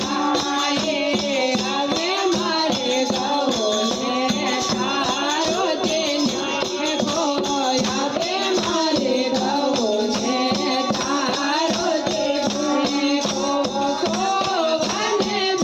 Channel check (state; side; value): identical; both; correlation 1.00